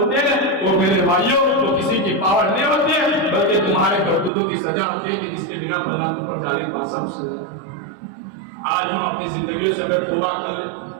ہیں, وہ میرے بھائیوں تو کسی کی پاور نہیں ہوتی ہے بلکہ تمہارے کرتوتوں کی سزا ہوتی ہے کہ جس کے بنا پر اوپر جانے کا سب سزا. آج ہم اپنی زندگیوں سے اگر توبہ کر لیں,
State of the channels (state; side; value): drops out; left; at 4.3 s